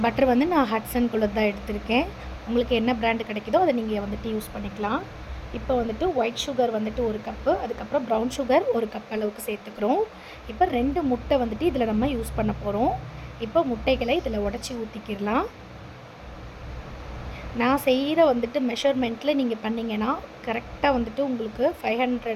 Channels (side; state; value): both; identical; correlation 1.00